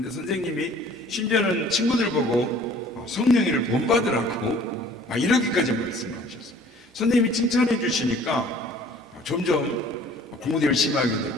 선생님이 심지어는 친구들 보고 성령이를 본받으라고 이렇게까지 말씀을 하셨어요. 선생님이 칭찬해 주시니까 점점 공부도 열심히 하게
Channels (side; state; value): both; normal; correlation 0.52